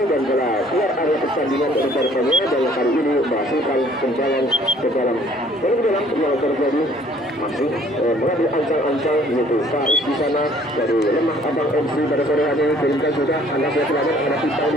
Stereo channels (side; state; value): both; normal; correlation 0.58